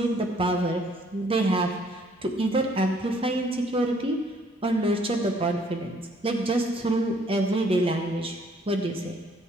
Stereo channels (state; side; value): normal; both; correlation 0.63